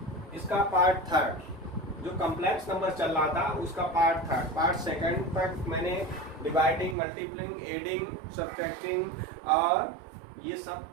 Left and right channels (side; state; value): left; drops out; at 7.0 s